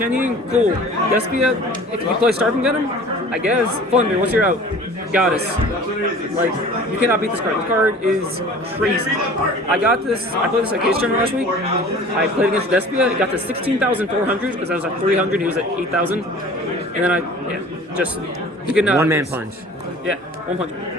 Ying, cool. Despia, if you play Starving Venom, I guess. Flunder, what's your out? Goddess. Like, you cannot beat this card. This card is crazy. I played this at Case Tournament last week. I played against Despia, it got to 16,400 because I was at 300, he was at 8,000. And then he could not. One man punch. Yeah, 1 punch.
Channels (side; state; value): both; normal; correlation 0.45